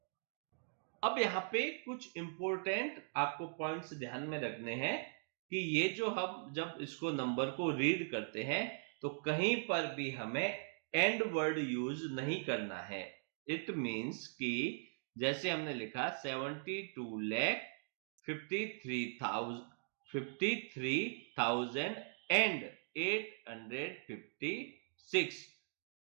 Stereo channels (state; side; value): silent; left; digital silence